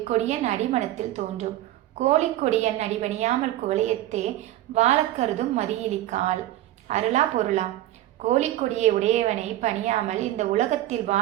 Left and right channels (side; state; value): left; quieter; 14.5 dB